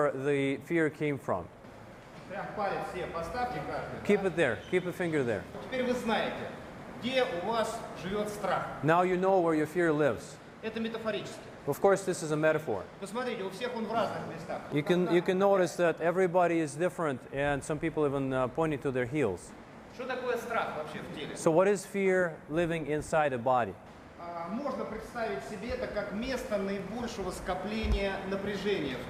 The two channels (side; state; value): both; identical; correlation 1.00